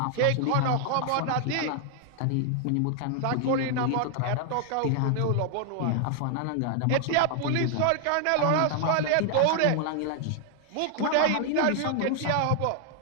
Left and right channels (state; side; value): different; both; correlation 0.00